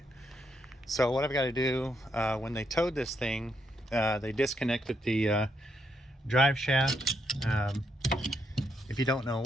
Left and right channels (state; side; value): normal; both; correlation 0.78